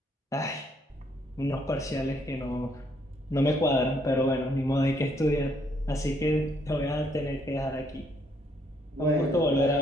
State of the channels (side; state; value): both; normal; correlation 0.70